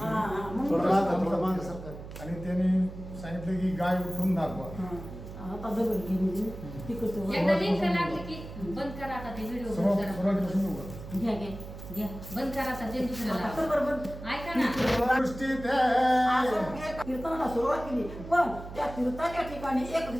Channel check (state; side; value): noise; right; hum, 12 dB below the sound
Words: होती. आणि त्यांनी सांगितलं की गाय उठून दाखवा. आता दगड घेऊन तिकडचं एकदा लिंक लागली की बंद करा आता ते व्हिडिओ बंद करा. घ्या घ्या घ्या बंद करा आता ते दुसऱ्याला आता बरोबर ऐका ना. दृष्टीत कीर्तनाला सुरुवात केली, पण त्या तीर्थाच्या ठिकाणी